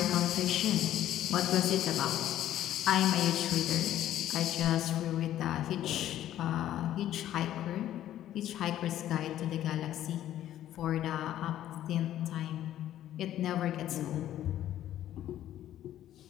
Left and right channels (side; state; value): right; quieter; 12.3 dB